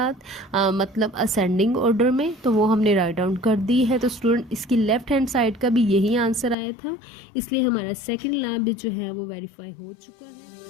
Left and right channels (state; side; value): drops out; right; at 6.6 s